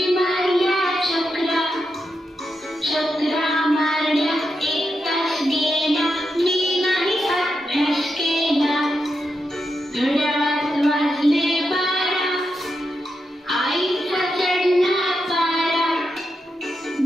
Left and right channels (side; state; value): both; normal; correlation 0.86